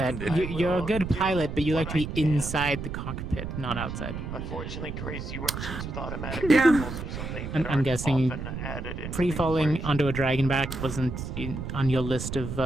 that can do. you're a good pilot, but you like to be inside the cockpit, not outside. Unfortunately, crazy Russians with automatic Yeah. rifles or something And that I'm aren't guessing often added into free-falling onto a dragon back wasn't on your list of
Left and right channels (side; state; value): right; noise; rumble, 6 dB below the sound